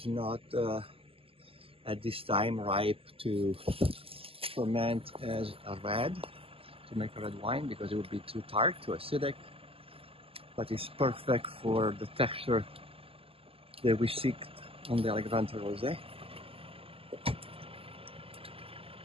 not at this time ripe to ferment as a red, to make a red wine, because it would be too tart, too acidic. But it's perfect for the texture that we seek on the Allegrante Rose.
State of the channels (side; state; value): left; late; 0.27 ms